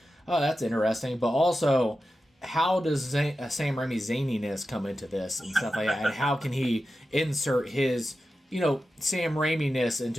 oh, that's interesting. But also, how does Sam Raimi's zaniness come into this and stuff like that? And how can he insert his Sam Raimi-ness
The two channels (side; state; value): both; normal; correlation 0.92